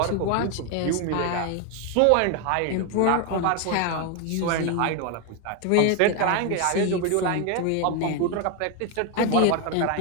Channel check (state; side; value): different; both; correlation 0.01